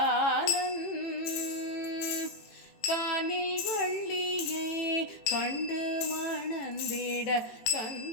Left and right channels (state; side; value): late; right; 18 ms